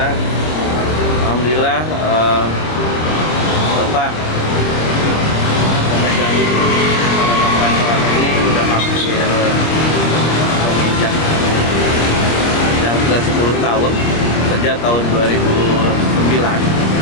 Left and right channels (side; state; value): right; late; 26 ms